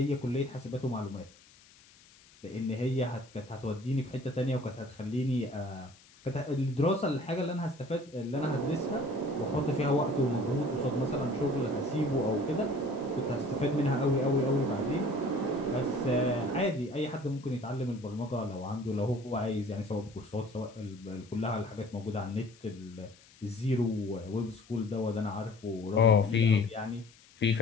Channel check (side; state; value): left; noise; hiss, 26 dB below the sound